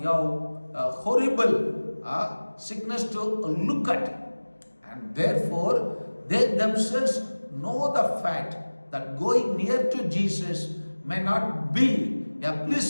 horrible sickness to look at. And therefore, they themselves know the fact that going near to Jesus may not be a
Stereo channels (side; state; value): both; inverted; correlation -1.00